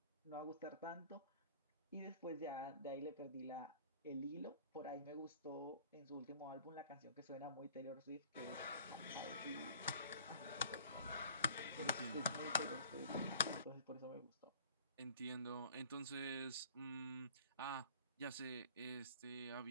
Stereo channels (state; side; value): inverted; both; correlation -0.49